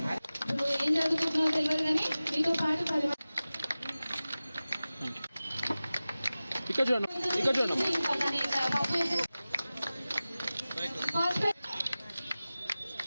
ఏం చదువుకుంటున్నావు తెలియదు కానీ మీతో పాటు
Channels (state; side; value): inverted; both; correlation -0.97